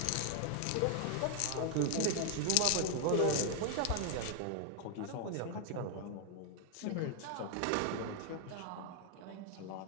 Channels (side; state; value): both; different; correlation 0.00